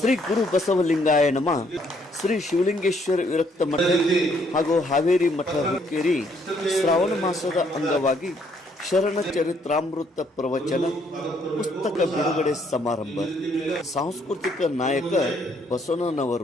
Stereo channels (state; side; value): normal; both; correlation 0.68